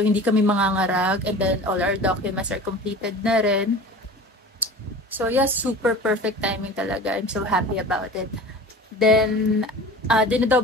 kami mangangarag, and then all our documents are completed na rin. So, yes, super perfect timing talaga. I'm so happy about it. Then,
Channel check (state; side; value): normal; both; correlation 0.38